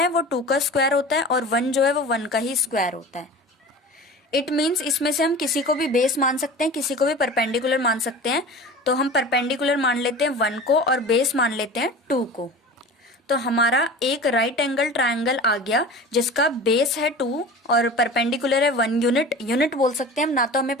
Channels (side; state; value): both; normal; correlation 0.36